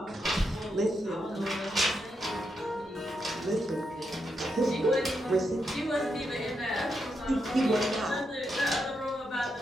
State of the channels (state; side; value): normal; both; correlation 0.83